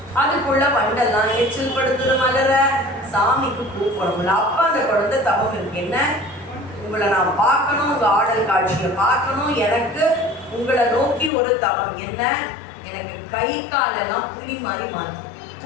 அதுக்குள்ள வண்டெல்லாம் எச்சில் படுத்துது மலர. சாமிக்கு பூ போடணும்ல. அப்ப அந்த குழந்தை தவம் இருக்கு. என்ன, உங்களை நான் பார்க்கணும், உங்க ஆடல் காட்சியை பார்க்கணும், எனக்கு உங்களை நோக்கி ஒரு தவம். என்ன, எனக்கு கை காலெல்லாம் புலி மாதிரி மாறும்.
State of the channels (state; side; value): drops out; right; at 11.3 s